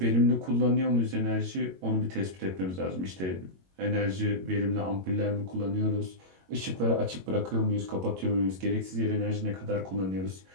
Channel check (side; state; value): left; late; 22 ms